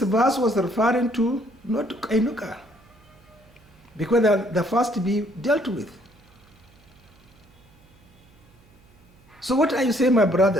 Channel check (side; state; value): right; noise; hum, 29 dB below the sound